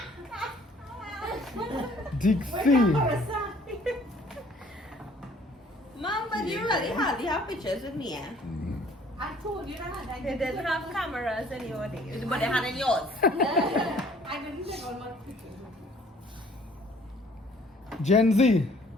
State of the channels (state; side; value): normal; both; correlation 0.57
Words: Dixie. Mom, but you really hardly have pictures with me, eh? I told you that. I They didn't have cameras in your days. But they had in yours. I didn't take all my pictures. Gen Z.